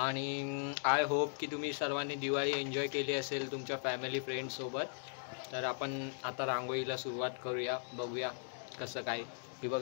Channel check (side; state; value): right; silent; digital silence